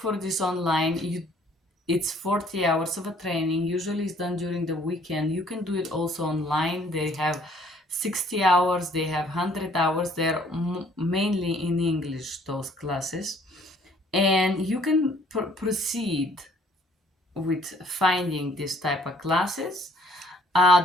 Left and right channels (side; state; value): both; normal; correlation 0.60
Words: this online. It's 40 hours of a training. Usually it's done during the weekend. You can do it also online. They have 60 hours, they have 100 hours. They're mainly in English, those classes. And you can proceed with finding this type of classes.